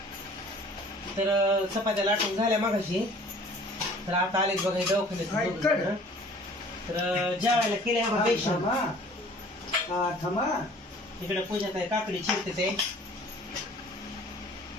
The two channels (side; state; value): both; normal; correlation 0.50